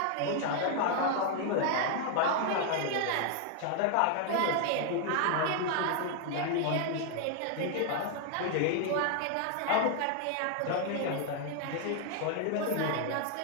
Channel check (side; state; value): both; different; correlation 0.00